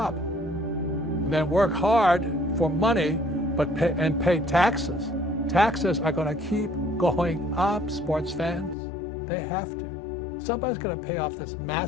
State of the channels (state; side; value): drops out; right; at 8.8 s